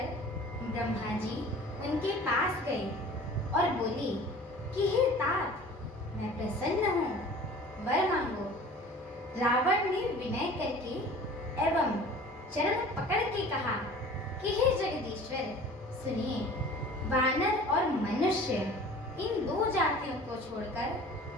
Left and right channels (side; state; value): both; normal; correlation 0.44